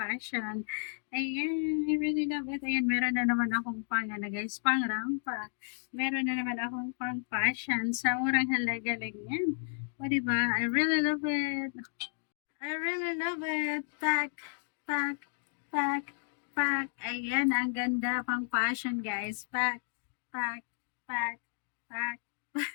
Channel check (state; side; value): silent; right; digital silence